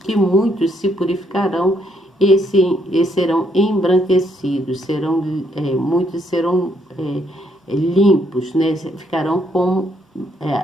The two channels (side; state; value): both; normal; correlation 0.72